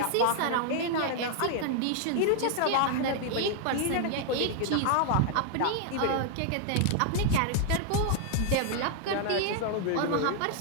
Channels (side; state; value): both; different; correlation 0.00